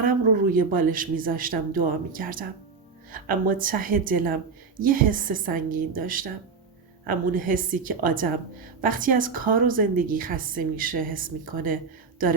رو روی بالش می زاشتم دعا می کردم. اما ته دلم یه حس سنگین داشتم. همون حسی که آدم وقتی از کار و زندگی خسته میشه حس میکنه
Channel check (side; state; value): left; quieter; 5.1 dB